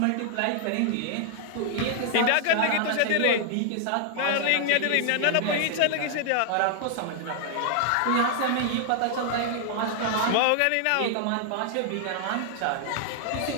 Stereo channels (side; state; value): both; different; correlation 0.00